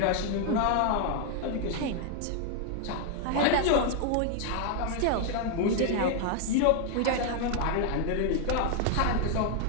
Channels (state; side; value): different; both; correlation 0.00